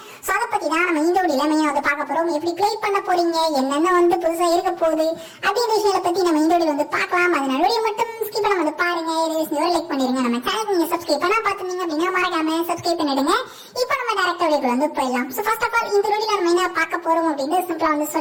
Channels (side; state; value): both; identical; correlation 1.00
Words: சோ அதை பத்தி தான் நம்ம இந்த வீடியோல மெயினா வந்து பார்க்க போறோம். எப்படி ப்ளே பண்ண போறீங்க, என்னென்ன வந்து புதுசா இருக்க போகுது அப்படின்ற விஷயத்தை பத்தி நம்ம இந்த வீடியோ வந்து பார்க்கலாம். அதனால வீடியோ மட்டும் ஸ்கிப் பண்ணாம வந்து பாருங்க. லைக் பண்ணிருங்க. நம்ம சேனல் நீங்க சப்ஸ்கிரைப் பண்ணா பாத்துட்டீங்க அப்படின்னா மறக்காம சப்ஸ்கிரைப் பண்ணிடுங்க. இப்போ நம்ம டைரக்டா வீடியோக்குள்ள வந்து போயிடலாம். சோ ஃபர்ஸ்ட் ஆஃப் ஆல் இந்த வீடியோல நம்ம என்ன பார்க்க போறோம் அப்படின்னு சிம்பிளா வந்து